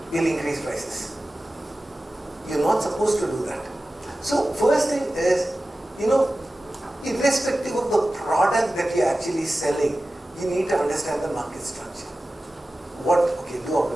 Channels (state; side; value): normal; both; correlation 0.95